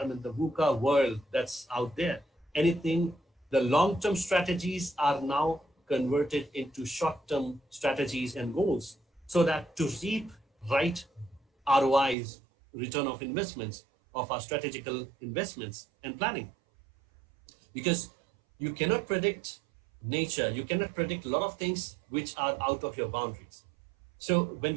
the VUCA world that's out there. Anything, the long-term strategies are now converted into short-term strategies and goals, so that to reap right ROIs, return of investments, of our strategical investments and planning. Because you cannot predict nature, you cannot predict a lot of things which are out of your boundaries. So when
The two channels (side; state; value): left; drops out; at 12.2 s